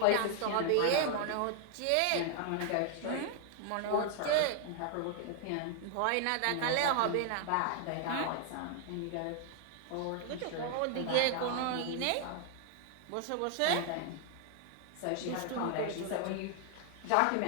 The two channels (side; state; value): both; different; correlation 0.00